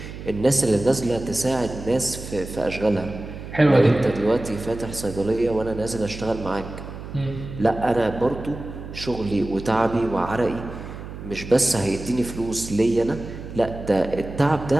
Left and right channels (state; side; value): noise; right; hum, 11 dB below the sound